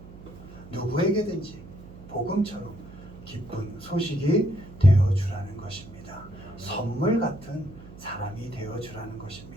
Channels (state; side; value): noise; right; hum, 17 dB below the sound